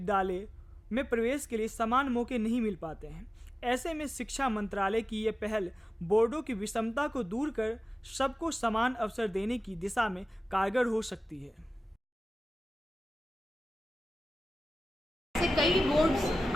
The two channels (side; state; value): both; normal; correlation 0.96